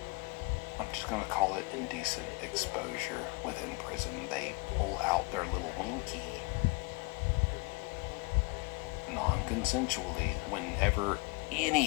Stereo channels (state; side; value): quieter; right; 28.3 dB